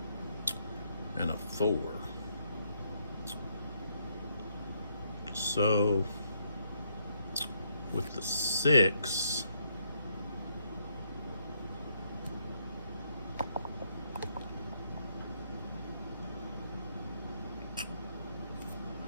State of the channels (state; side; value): inverted; both; correlation -0.74